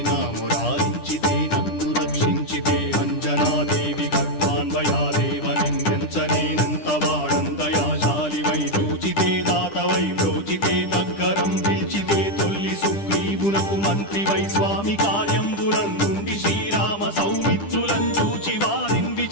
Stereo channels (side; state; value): right; late; 10 ms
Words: నా మురారించితే నన్ను రక్షించితే అంజనాదేవి గర్భాన్వయాదేవ నిన్నెంచనేనంత వాడంతయాశాలివై చూచితే దాతవై బ్రోచితే దగ్గరం పిలిచితే తొల్లి సుగ్రీవునకు మంత్రివై స్వామి కార్యంబునందుండి శ్రీరామ సౌమిత్రులను చూచి